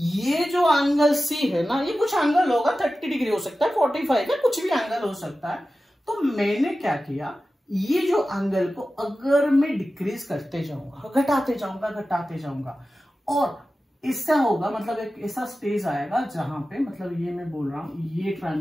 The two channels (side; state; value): both; normal; correlation 0.94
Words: जो एंगल सी है ना, ये कुछ एंगल होगा, 30 डिग्री हो सकता है, 45 है, कुछ भी एंगल हो सकता है। तो मैंने क्या किया, ये जो एंगल को अगर मैं डिक्रीज करते जाऊंगा, घटाते जाऊंगा, और इससे होगा मतलब एक ऐसा स्टेज आएगा जहां पे, मतलब ये मैं बोल रहा हूं, ये